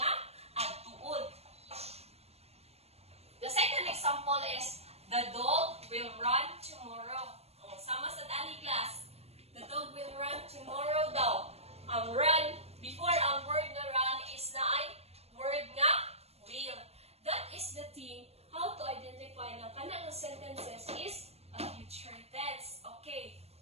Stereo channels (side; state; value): left; late; 0.30 ms